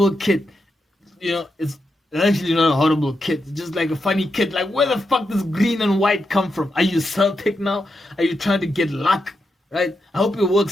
kit. It's actually not a horrible kit. It's just like a funny kit. Like, where the fuck does green and white come from? Are you Celtic now? Are you trying to get luck? Right? I hope it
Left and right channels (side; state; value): both; normal; correlation 0.85